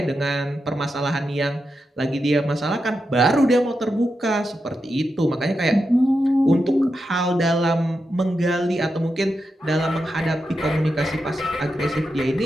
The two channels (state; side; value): normal; both; correlation 0.87